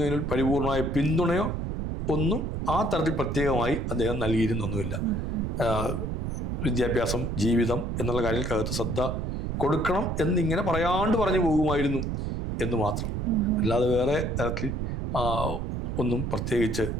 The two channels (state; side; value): noise; right; rumble, 2 dB below the sound